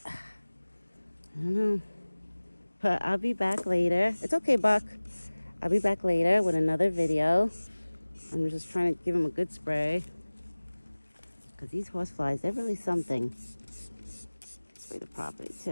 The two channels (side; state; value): both; inverted; correlation -1.00